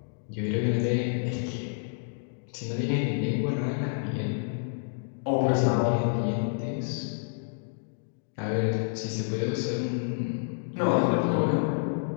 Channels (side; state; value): right; silent; digital silence